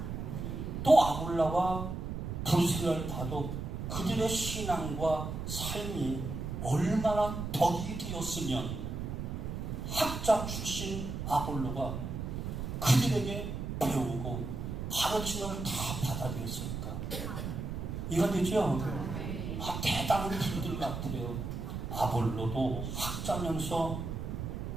또 아굴라와 브리스길라를 봐도 그들의 신앙과 삶이 얼마나 덕이 되었으면 학자 출신 아볼로가 그들에게 배우고 가르침을 다 받아들였을까? 이해가 되죠? 대단한 분들 같아요. 아볼로도 학자면서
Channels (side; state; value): right; noise; rumble, 5 dB below the sound